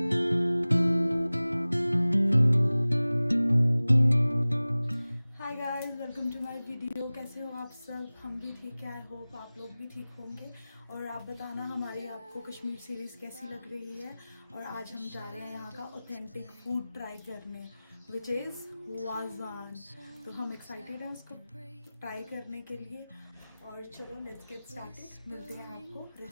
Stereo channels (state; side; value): inverted; both; correlation -0.98